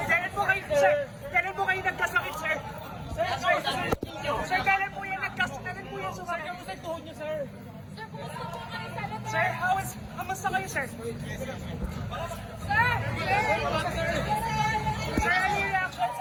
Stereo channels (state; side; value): identical; both; correlation 1.00